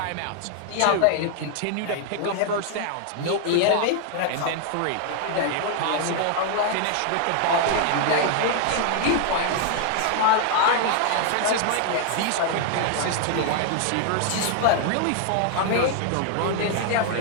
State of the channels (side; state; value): both; different; correlation 0.00